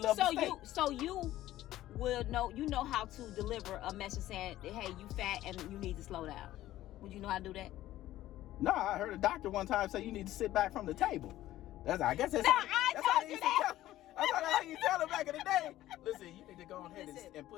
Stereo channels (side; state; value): right; quieter; 14.5 dB